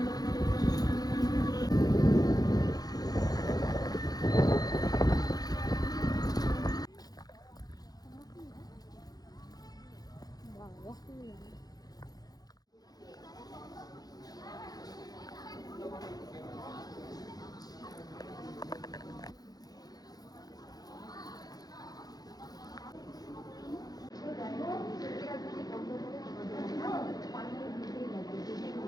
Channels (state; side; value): late; right; 0.19 ms